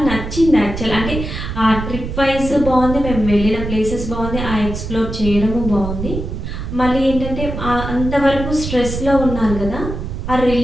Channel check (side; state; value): right; noise; rumble, 6 dB below the sound